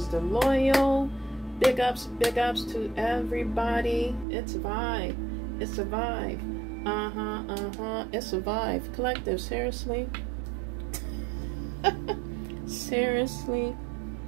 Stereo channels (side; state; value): left; drops out; at 4.2 s